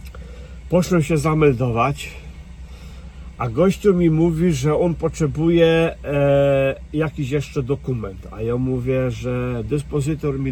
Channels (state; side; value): identical; both; correlation 1.00